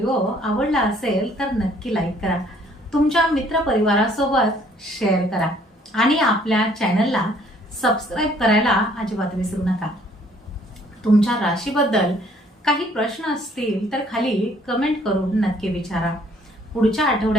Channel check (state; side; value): normal; both; correlation 0.61